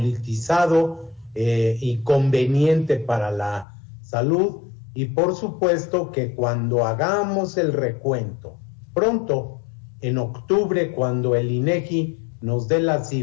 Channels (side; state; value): right; drops out; at 3.7 s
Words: y conveniente para la salud, y por supuesto que cuando hagamos el recuento pronto, en octubre, cuando el INEGI nos dé las